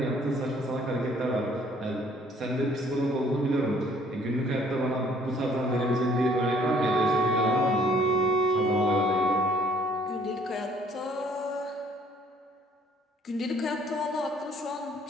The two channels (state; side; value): normal; both; correlation 0.60